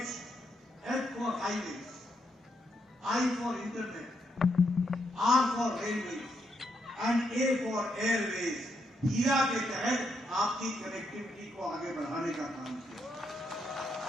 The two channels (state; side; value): normal; both; correlation 0.79